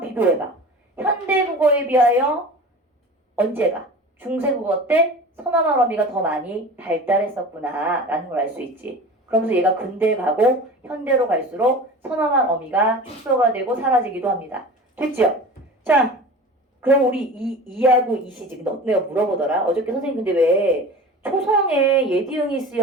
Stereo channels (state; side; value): normal; both; correlation 0.36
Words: 현대국어에 비하여 언제가? 중세국어 때 선어말 어미가 더 많이 발달했었구나 라는 걸 알 수 있지. 그러면서 얘가 근대 가고 현대로 갈수록 선어말 어미가 축소가 되고 사라지기도 합니다. 됐죠? 자, 그럼 우리 이하고 이시지. 내가 물어보더라. 어저께 선생님 근데 왜 초성에 예디응이